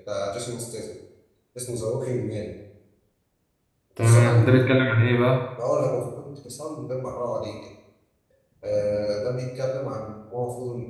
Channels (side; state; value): both; identical; correlation 1.00